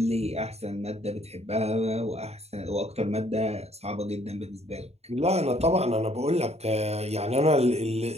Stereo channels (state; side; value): late; left; 0.30 ms